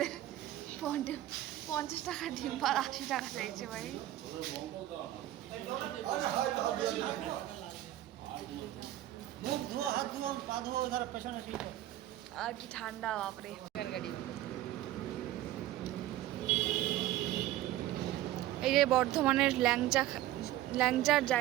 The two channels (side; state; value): left; quieter; 14.4 dB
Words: 50 টাকা ডিম আর 80 টাকা চাইছে ভাই। মুখ ধোয়া, হাত ধোয়া, পা ধোয়া, ধর পেছনে ঠিক। আর কি ঠান্ডা বাপরে। এই যে বর্ধমানের ল্যাংচার